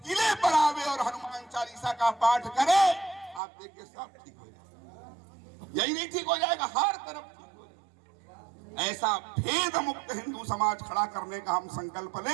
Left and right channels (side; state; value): left; drops out; at 3.4 s